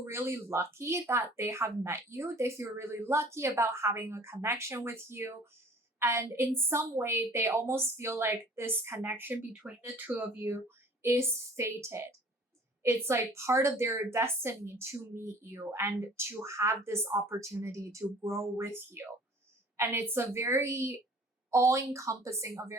really lucky that they have met you. They feel really lucky about having a connection with you. And in some way, they almost feel like this connection between the two of you is fated. It's like part of their destiny to meet you and to have this opportunity to grow with you. And it's a very all encompassing, a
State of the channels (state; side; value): normal; both; correlation 0.49